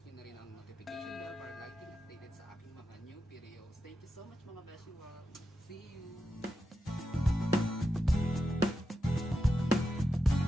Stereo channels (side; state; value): both; normal; correlation 0.88